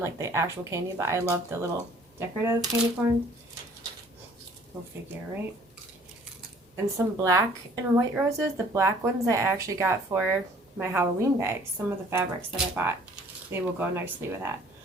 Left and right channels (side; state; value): both; normal; correlation 0.55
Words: the actual candy, but I love the little decorative candy corn. Go figure, right? And some black and white roses. The black ones I actually got for my Halloween bags. Some of the fabrics that I bought, they will go nicely with that.